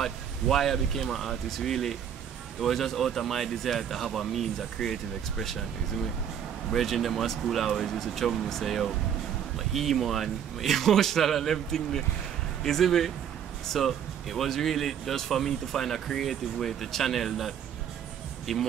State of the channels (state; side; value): quieter; left; 8.8 dB